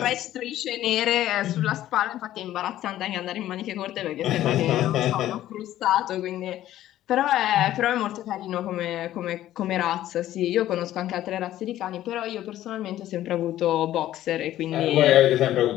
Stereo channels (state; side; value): quieter; right; 13.4 dB